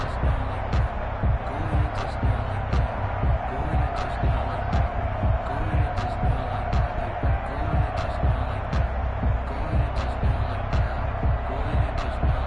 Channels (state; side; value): identical; both; correlation 1.00